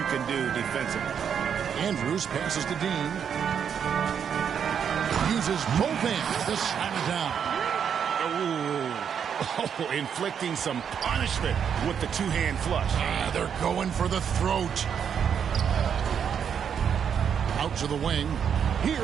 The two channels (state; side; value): quieter; left; 7.7 dB